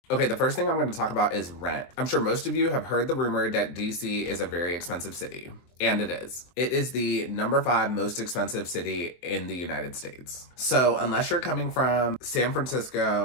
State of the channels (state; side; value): late; right; 24 ms